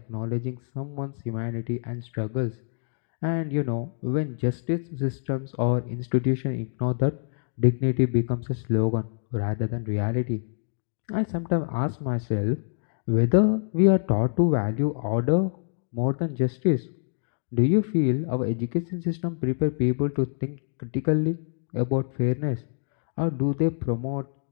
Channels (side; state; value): right; silent; digital silence